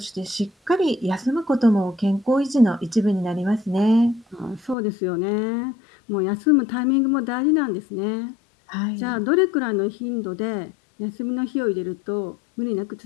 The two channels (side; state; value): right; drops out; at 4.8 s